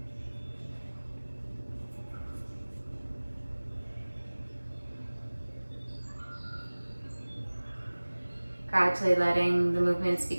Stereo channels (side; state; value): both; inverted; correlation -1.00